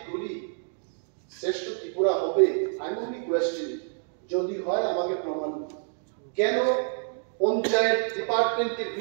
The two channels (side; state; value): left; silent; digital silence